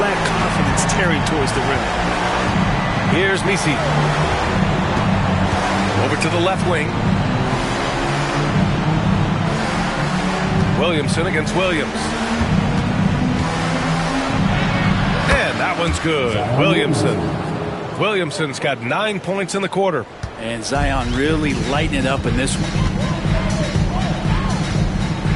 lack confidence tearing towards the rim. Here's Misi. Over to the left wing. Williamson against Williams. And that one's good. Williamson's got 9 points in the quarter. And Zion really lighting it up in this one.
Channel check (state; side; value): identical; both; correlation 1.00